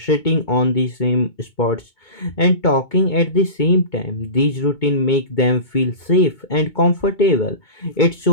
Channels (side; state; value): right; late; 2.2 ms